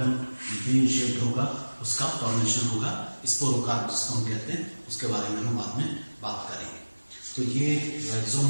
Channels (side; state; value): both; inverted; correlation -1.00